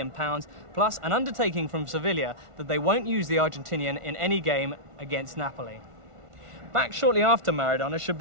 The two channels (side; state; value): left; late; 1.4 ms